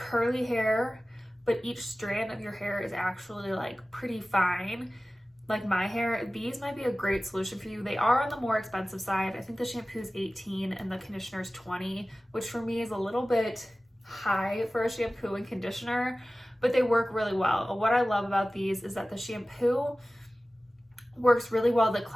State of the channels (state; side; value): normal; both; correlation 0.97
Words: hair, but each strand of your hair is actually like pretty fine, like my hair, these might be a great solution for you. They are on the more expensive side. I think the shampoo is $18 and the conditioner is $20, which for me is a little bit high for a shampoo and conditioner, but they work really well. What I love about these is that the shampoo works really well to